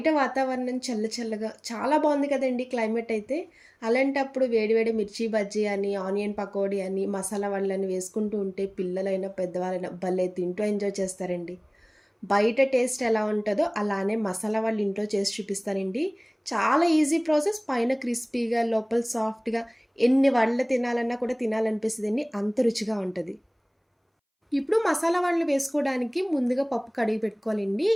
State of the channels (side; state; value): both; identical; correlation 1.00